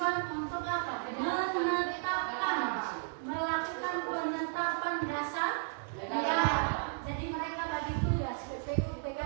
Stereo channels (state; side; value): silent; left; digital silence